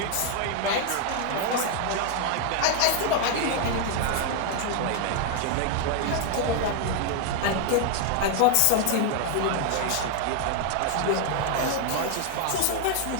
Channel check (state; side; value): different; both; correlation 0.00